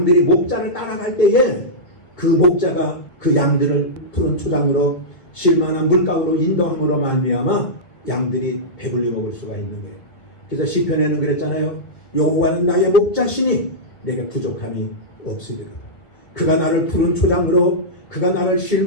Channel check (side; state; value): right; late; 1.7 ms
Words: 목자를 따라갈 때에 그 목자가 그 양들을 푸른 초장으로 쉴만한 물가로 인도함으로 말미암아 양들이 배불리 먹을 수가 있는 거예요. 그래서 시편에는 그랬잖아요. 여호와는 나의 목자시니 내게 부족함이 없으리라. 그가 나를 푸른 초장으로, 그가 나를